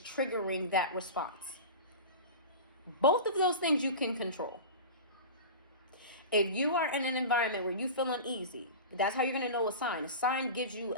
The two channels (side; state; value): both; inverted; correlation -0.30